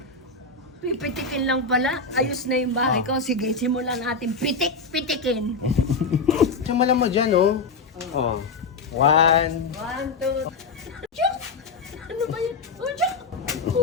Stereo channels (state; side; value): quieter; right; 4.1 dB